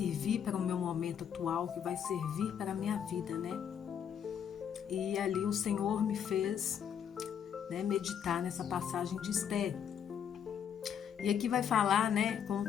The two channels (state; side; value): quieter; right; 8.4 dB